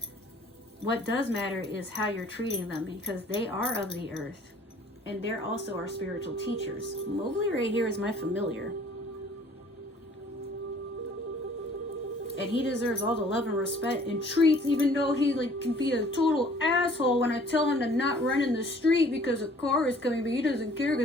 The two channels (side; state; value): both; normal; correlation 0.54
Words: What does matter is how you're treating them, because they are of the earth and they're also our spiritual teachers. Mowgli right here is my familiar. And he deserves all the love and respect and treats, even though he can be a total asshole when I tell him to not run in the street because a car is coming, but he doesn't care